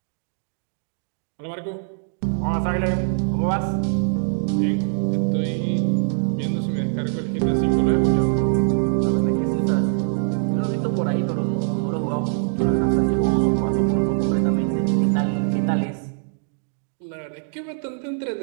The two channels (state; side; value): silent; left; digital silence